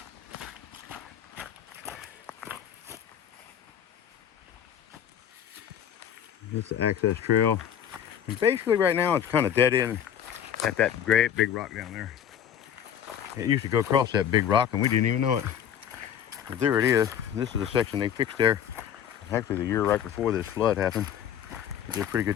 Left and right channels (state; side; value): quieter; right; 9.3 dB